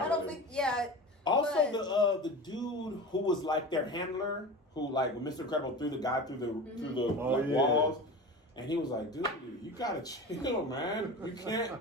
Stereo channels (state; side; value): normal; both; correlation 0.32